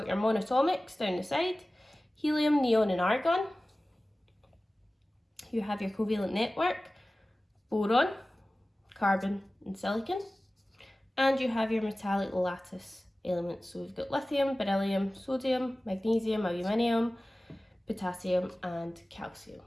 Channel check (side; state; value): both; normal; correlation 0.97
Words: your monatomics down the side, helium, neon, and argon. You have your covalent network, boron, carbon, and silicon. And you have your metallic lattice elements. So we've got lithium, beryllium, sodium, magnesium, aluminium, potassium and calcium.